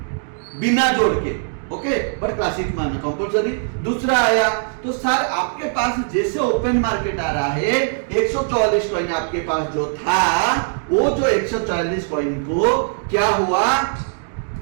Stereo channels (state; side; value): silent; left; digital silence